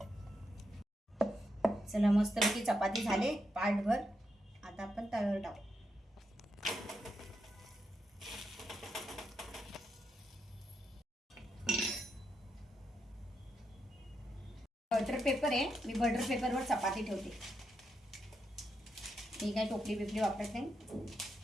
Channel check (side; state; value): both; normal; correlation 0.83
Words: चला मस्तपैकी चपाती झाले पाटभर. आता आपण तव्यावर टाकू. बटर पेपर आहे, मी बटर पेपरवर चपाती ठेवते. मी काय टोपली बिपली वापरत नाही.